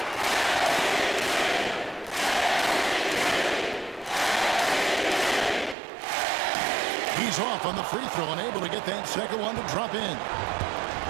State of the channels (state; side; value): drops out; left; at 5.8 s